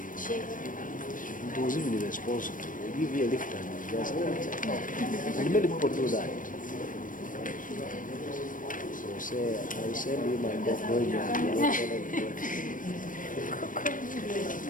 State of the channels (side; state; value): right; late; 0.39 ms